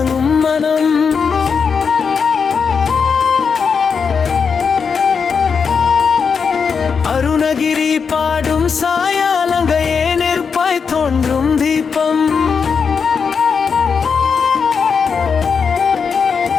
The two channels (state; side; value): quieter; right; 5.9 dB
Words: மனம். அருணகிரி பாடும் சாயாலங்கையே நெருப்பாய் தோன்றும் தீபம்.